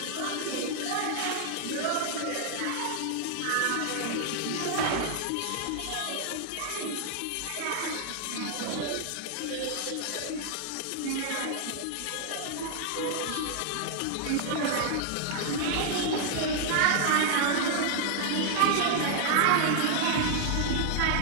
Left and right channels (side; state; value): both; different; correlation -0.01